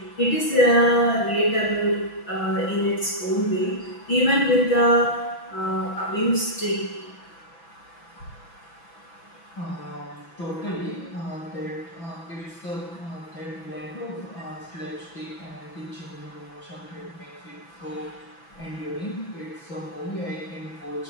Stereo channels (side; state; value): right; late; 6.0 ms